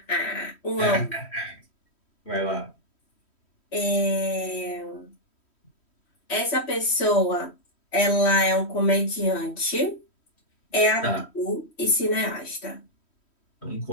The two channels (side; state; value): right; late; 3.1 ms